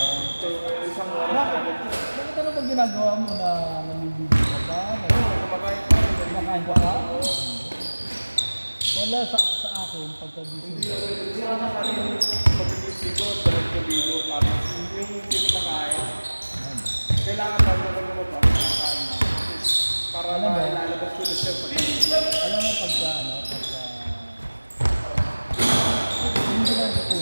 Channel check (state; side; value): inverted; both; correlation -1.00